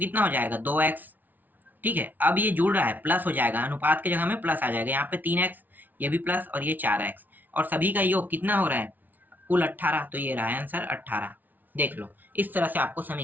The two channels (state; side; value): late; left; 0.083 ms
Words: हो जाएगा, 2x। ठीक है, अब ये जुड़ रहा है, प्लस हो जाएगा, अनुपात की जगह में प्लस आ जाएगा, यहाँ पे 3x, ये भी प्लस, और ये 4x, और सभी का योग कितना हो रहा है, कुल 18, तो ये रहा आंसर 18। देख लो, इस तरह से आपको